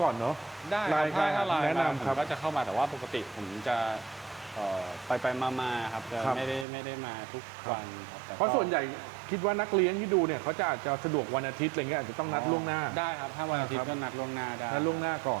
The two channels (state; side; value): drops out; left; at 6.7 s